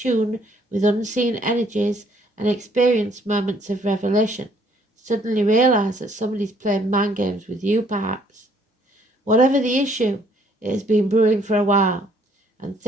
with unseen energies and experience moments of revelation. Suddenly realize that somebody's playing mind games with you, perhaps. Whatever the issue, it has been brewing for a while, and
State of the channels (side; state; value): both; normal; correlation 0.63